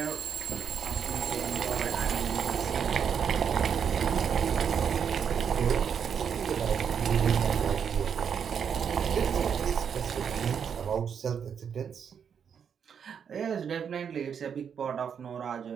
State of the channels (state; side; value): quieter; left; 7.4 dB